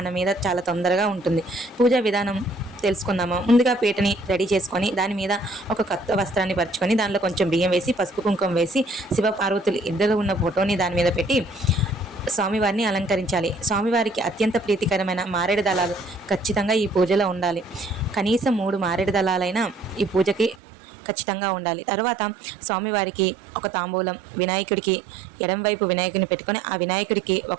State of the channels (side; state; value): left; drops out; at 20.6 s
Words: మీద చాలా తొందరగా ఉంటుంది. పూజా విధానం తెలుసుకుందాము. ముందుగా పీటని రెడీ చేసుకొని దాని మీద ఒక కొత్త వస్త్రాన్ని పరుచుకొని దానిలో కొంచెం బియ్యం వేసి పసుపు కుంకుమ వేసి శివ పార్వతులు ఇద్దరు ఉన్న ఫోటోని దాని మీద పెట్టి స్వామివారిని అలంకరించాలి. స్వామివారికి అత్యంత ప్రీతికరమైన మారేడు దళాలు ఖచ్చితంగా ఈ పూజలో ఉండాలి. కనీసం 3 మారేడు దళాలైనా ఈ పూజకి ఖచ్చితంగా ఉండాలి. తర్వాత స్వామివారికి ఒక తాంబూలం, వినాయకుడికి ఎడంవైపు వినాయకుడిని పెట్టుకొని ఆ వినాయకుడికి